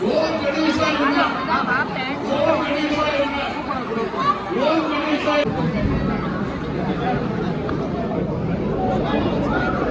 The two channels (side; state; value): both; identical; correlation 1.00